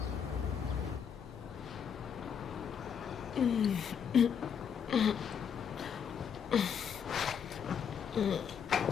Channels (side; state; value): right; quieter; 7.5 dB